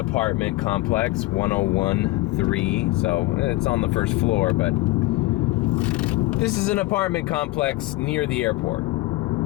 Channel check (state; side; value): quieter; right; 19.7 dB